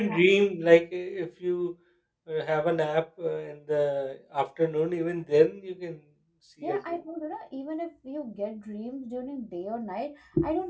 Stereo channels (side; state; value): both; identical; correlation 1.00